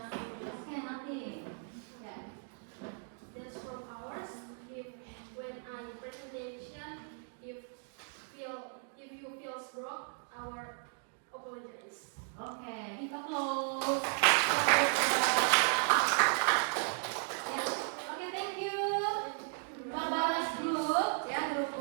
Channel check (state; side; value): silent; left; 54 dB below the other